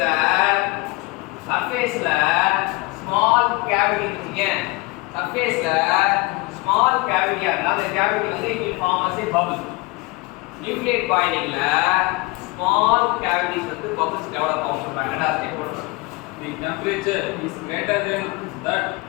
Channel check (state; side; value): quieter; right; 23.5 dB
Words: ஸ்மால் கேவிட்டி இருக்குங்க. சர்ஃபேஸ்ல ஸ்மால் கேவிட்டியா இருந்தா அந்த கேவிட்டி வந்து it will form as a bubble. Nucleate பாயிலிங்ல small cavities வந்து bubbles develop ஆகும் சொல்றாங்க. ரெண்டாவது ஸ்டெப் போடுறோம். The temperature is greater than that